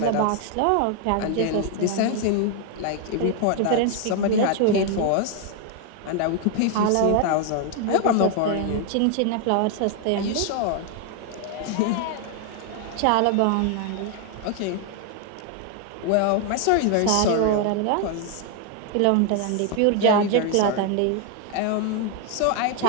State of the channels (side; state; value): both; different; correlation 0.00